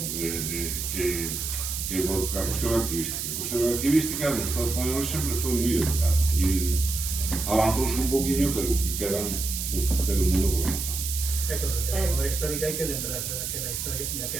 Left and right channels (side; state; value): right; noise; hiss, 4 dB below the sound